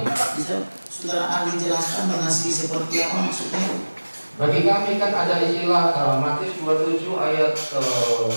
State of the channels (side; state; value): both; inverted; correlation -1.00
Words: Bisa saudara ahli jelaskan mengasihi seperti apa maksudnya? Bagi kami kan ada istilah Matius 27 ayat